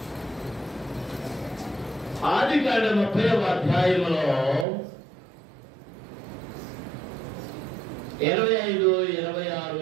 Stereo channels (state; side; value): drops out; left; at 4.7 s